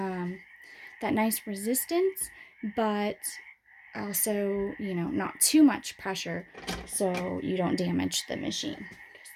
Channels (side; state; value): both; identical; correlation 1.00